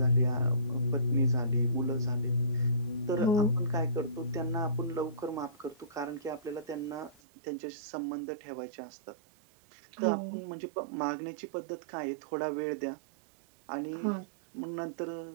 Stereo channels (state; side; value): drops out; left; at 7.2 s